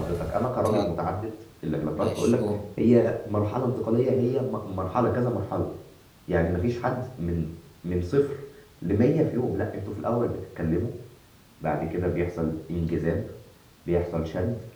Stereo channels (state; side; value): identical; both; correlation 1.00